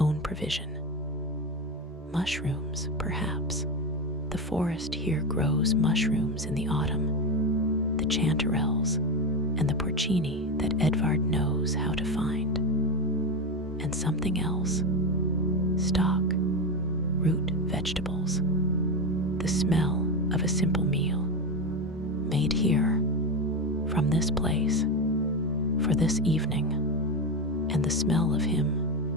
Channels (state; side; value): normal; both; correlation 0.16